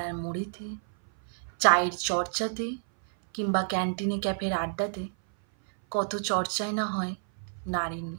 মোড়েতে, চায়ের চর্চাতে কিংবা ক্যান্টিনে ক্যাফের আড্ডাতে কত চর্চাই না হয় নারীর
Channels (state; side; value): silent; left; 57 dB below the other